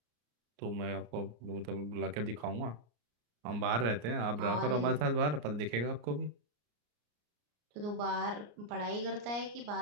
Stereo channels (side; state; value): left; late; 34 ms